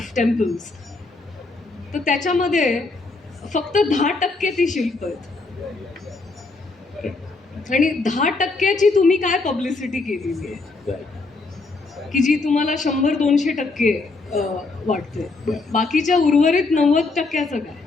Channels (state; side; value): quieter; right; 3.6 dB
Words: temples, तर त्याच्यामध्ये फक्त 10% ती शिल्प आहेत. आणि 10%ची तुम्ही काय पब्लिसिटी केलेली आहे की जी तुम्हाला 100-200% वाटते. बाकीच्या उर्वरित 90%चं काय.